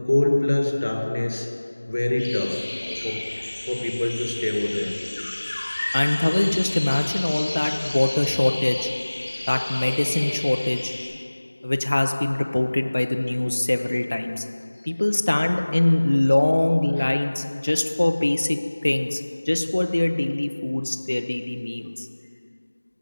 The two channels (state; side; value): inverted; both; correlation -1.00